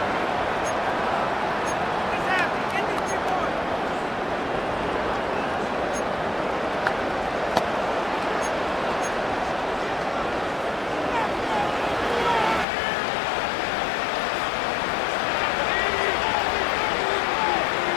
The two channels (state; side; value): drops out; right; at 12.7 s